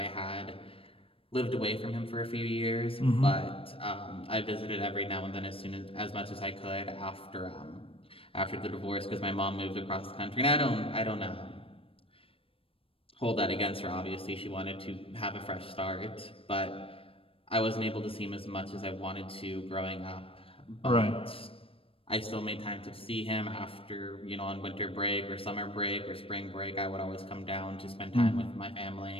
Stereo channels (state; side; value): late; right; 0.27 ms